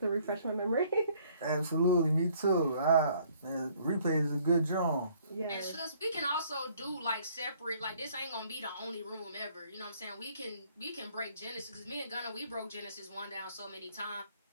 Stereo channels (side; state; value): both; inverted; correlation -0.62